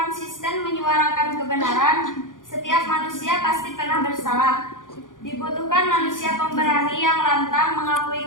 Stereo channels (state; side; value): late; right; 0.89 ms